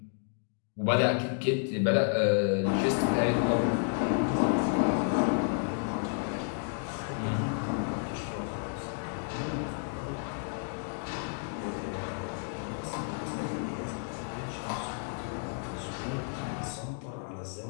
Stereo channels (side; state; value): right; silent; 57 dB below the other